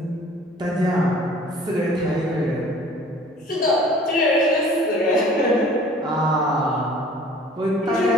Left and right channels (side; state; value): both; normal; correlation 0.50